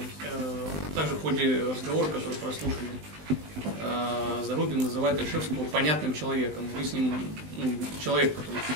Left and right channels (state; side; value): late; left; 19 ms